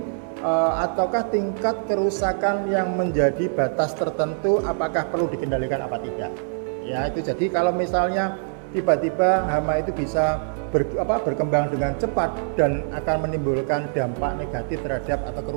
ataukah tingkat kerusakan yang menjadi batas tertentu apakah perlu dikendalikan apa tidak. Ya, itu jadi kalau misalnya tiba-tiba hama itu bisa berkembang dengan cepat dan akan menimbulkan dampak negatif terhadap atau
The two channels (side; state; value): left; silent; digital silence